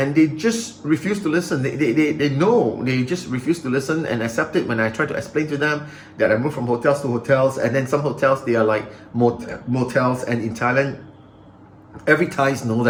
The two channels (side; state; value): both; identical; correlation 1.00